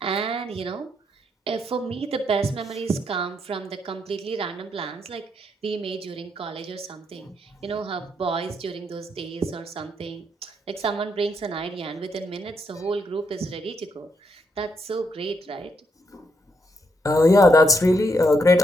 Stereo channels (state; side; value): normal; both; correlation 0.76